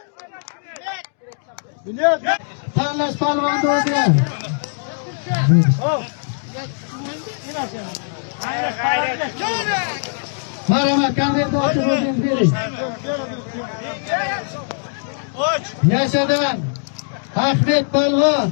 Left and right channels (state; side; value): silent; right; digital silence